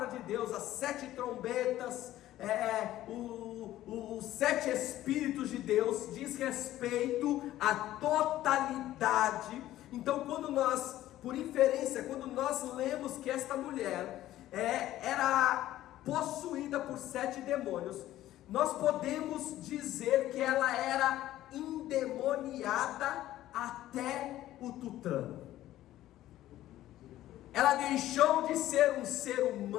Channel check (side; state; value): right; quieter; 14.1 dB